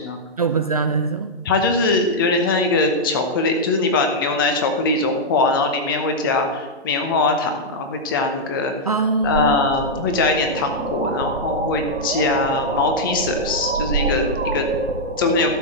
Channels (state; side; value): normal; both; correlation -0.04